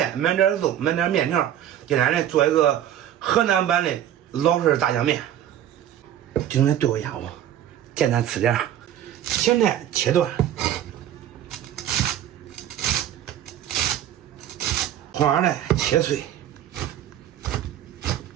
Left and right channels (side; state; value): left; quieter; 11.1 dB